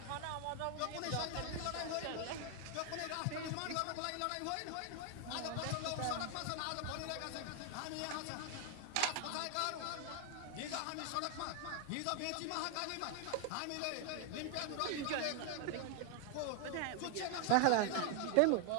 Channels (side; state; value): both; different; correlation 0.00